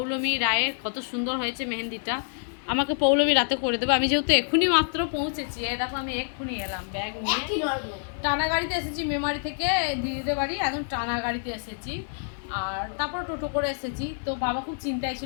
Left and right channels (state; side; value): silent; right; digital silence